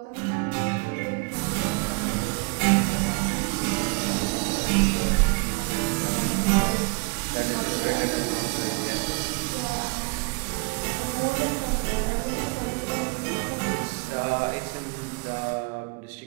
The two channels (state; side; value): quieter; left; 30.4 dB